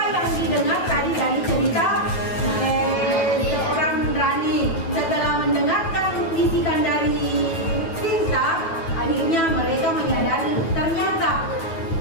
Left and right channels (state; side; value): late; right; 9.2 ms